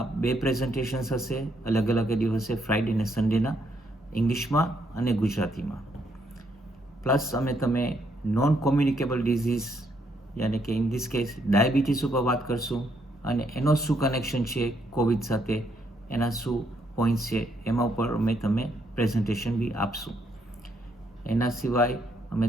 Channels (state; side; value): normal; both; correlation 0.74